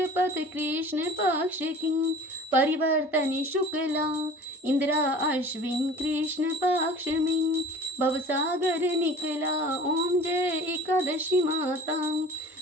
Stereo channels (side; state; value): both; normal; correlation 0.43